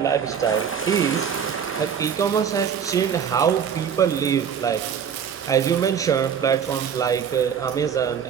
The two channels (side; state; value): left; quieter; 7.7 dB